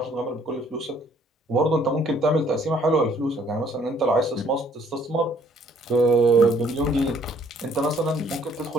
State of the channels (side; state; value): both; normal; correlation 0.62